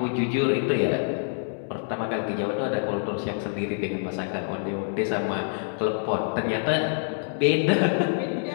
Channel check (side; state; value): right; silent; 61 dB below the other